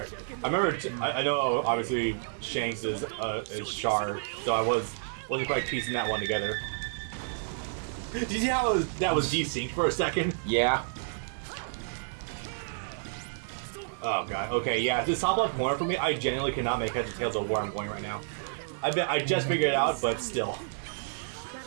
I remember. I know. Obviously, Shanks is Char, so I wasn't quite piecing that one together. Did you see how that was desynced for a second? Yeah. Oh god. Okay. Yeah. This top left corner for me, I genuinely cannot make heads or tails of where I'm going right now. I just figured it out, but still.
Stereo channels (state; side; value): silent; left; digital silence